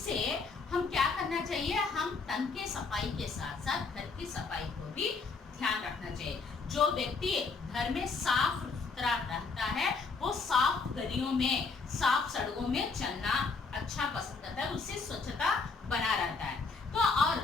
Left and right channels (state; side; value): quieter; right; 4.5 dB